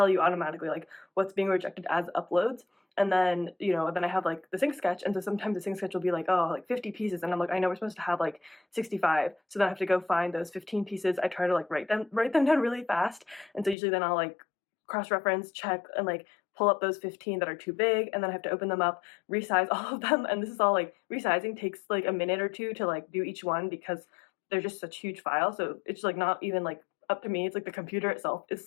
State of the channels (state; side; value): drops out; right; at 13.8 s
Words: you automatically like what's being rejected as uploads. And then then I have like the Sync Sketch, and so sometimes the Sync Sketch will be like, oh, like 50 pieces, and I'm like, I know we're supposed to have like 65, so then I have to go find those 15 pieces. I try to like write them down really fast, and so usually then I'll like cross-reference, check, and like pull up those 15 that are too big, and then I have to open them up, resize all of them, and this is all like resizing takes like a minute or two to like do each one because they're just such huge files. So it's like not even like up to me, it's like the computer itself is